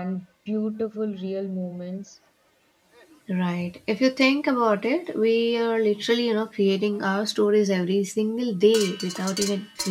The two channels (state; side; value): identical; both; correlation 1.00